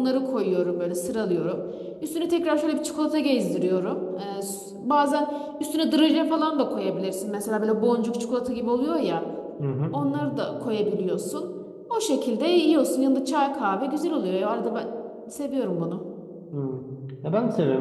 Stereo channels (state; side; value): identical; both; correlation 1.00